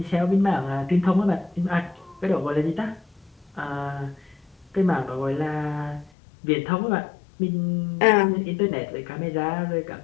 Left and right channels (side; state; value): right; drops out; at 6.1 s